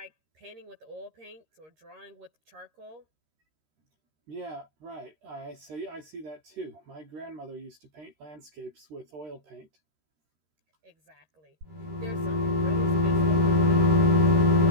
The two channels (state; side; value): late; left; 13 ms